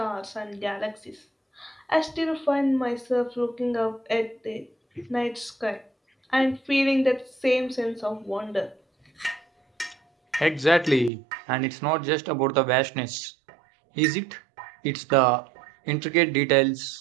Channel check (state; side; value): drops out; left; at 11.1 s